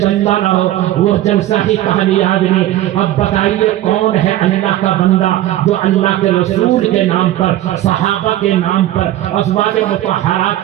نہ ہو وہ جلسہ ہی کامیاب نہیں، اب بتائیے کون ہے اللہ کا بندہ جو اللہ کے رسول کے نام پر، صحابہ کے نام پر، ازواج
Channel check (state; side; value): quieter; left; 14.0 dB